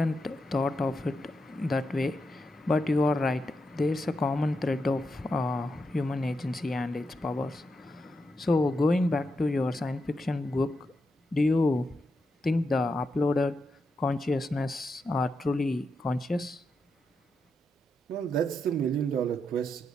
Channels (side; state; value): both; normal; correlation 0.85